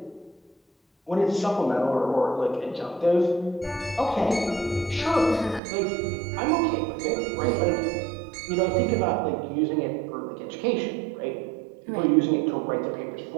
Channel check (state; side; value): drops out; left; at 5.6 s